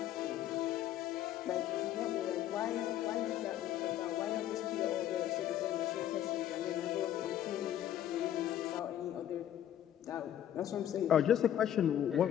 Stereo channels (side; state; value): right; quieter; 11.2 dB